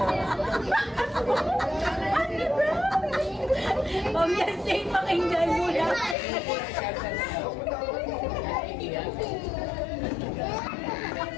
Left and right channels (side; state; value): right; drops out; at 6.2 s